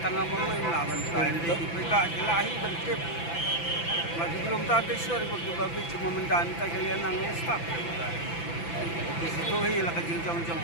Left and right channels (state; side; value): late; right; 5.9 ms